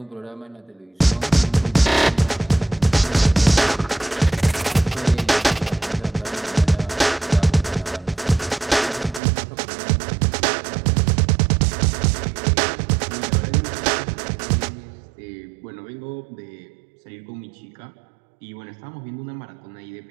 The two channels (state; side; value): drops out; left; at 9.2 s